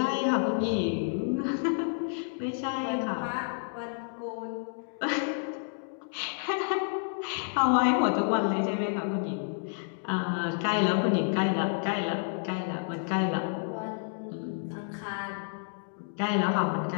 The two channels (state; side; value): silent; right; digital silence